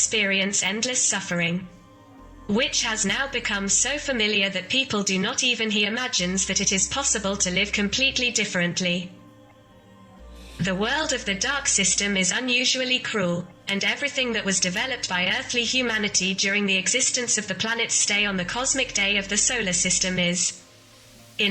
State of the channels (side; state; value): both; identical; correlation 1.00